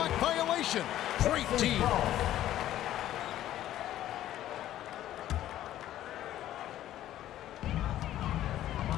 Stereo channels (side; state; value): right; quieter; 12.9 dB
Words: violation. Great D.